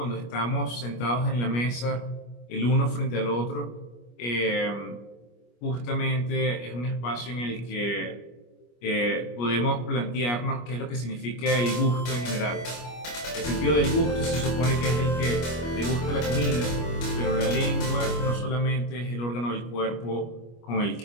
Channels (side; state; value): right; late; 25 ms